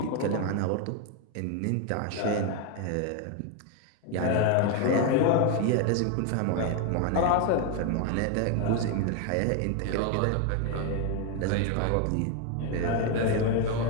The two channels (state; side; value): different; both; correlation 0.01